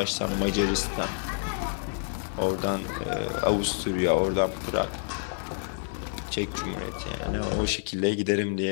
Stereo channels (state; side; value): silent; right; 59 dB below the other